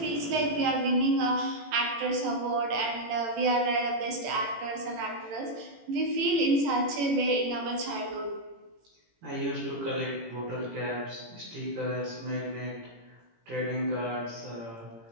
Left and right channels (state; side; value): late; left; 18 ms